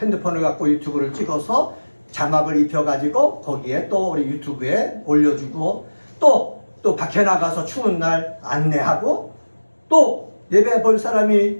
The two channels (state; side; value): inverted; both; correlation -1.00